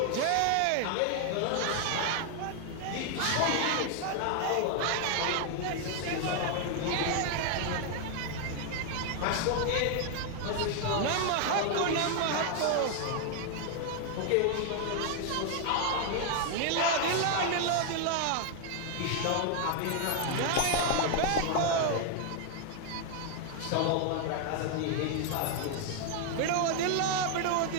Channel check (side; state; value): both; different; correlation 0.00